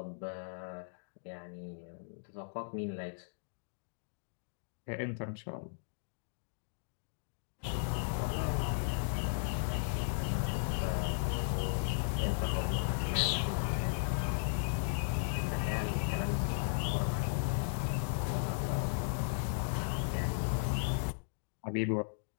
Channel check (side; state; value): right; silent; digital silence